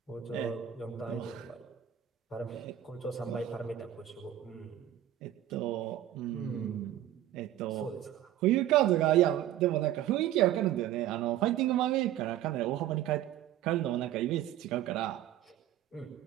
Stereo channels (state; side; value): quieter; left; 12.4 dB